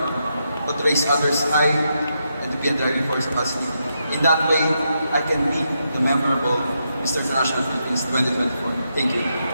but to raise others high and to be a driving force of us. In that way, I can be the memorable Mr. International Philippines 2024. Thank you.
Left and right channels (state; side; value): inverted; both; correlation -0.82